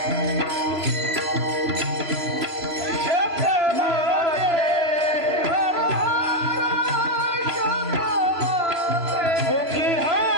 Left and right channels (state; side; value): late; left; 3.0 ms